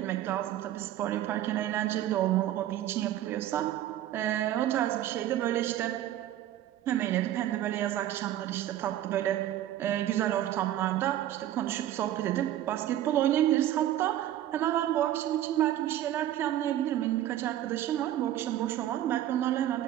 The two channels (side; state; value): left; quieter; 12.7 dB